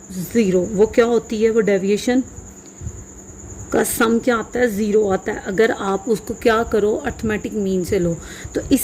ज़ीरो। वो क्या होती है, वो डेविएशन का सम क्या आता है, ज़ीरो आता है अगर आप उसको क्या करो, अर्थमेटिक मीन से लो। तो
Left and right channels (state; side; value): identical; both; correlation 1.00